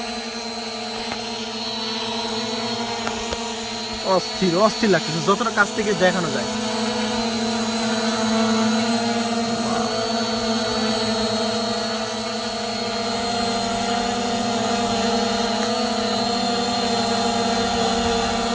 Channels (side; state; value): both; identical; correlation 1.00